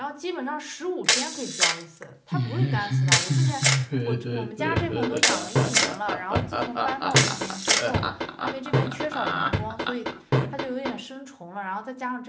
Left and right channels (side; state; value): both; identical; correlation 1.00